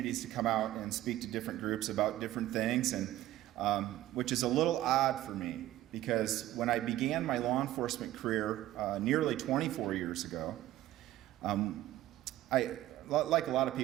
to come out and speak to different groups about different things, and which is a little odd for me, because when I began my law enforcement career nearly 24 years ago, like a lot of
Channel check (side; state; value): left; quieter; 14.7 dB